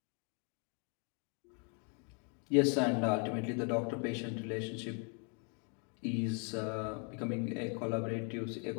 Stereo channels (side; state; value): right; quieter; 38.0 dB